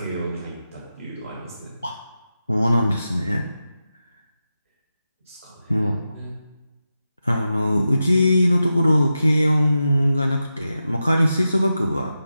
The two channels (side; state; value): both; inverted; correlation -0.90